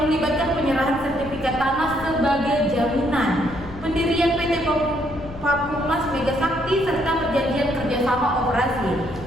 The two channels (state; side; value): noise; left; rumble, 16 dB below the sound